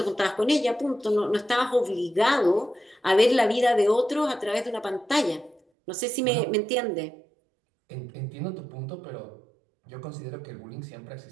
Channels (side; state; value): left; drops out; at 5.6 s